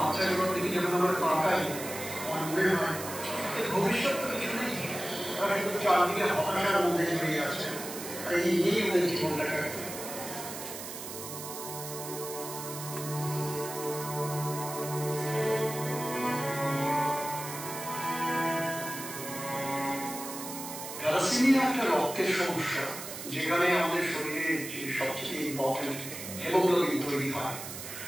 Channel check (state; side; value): noise; right; hiss, 9 dB below the sound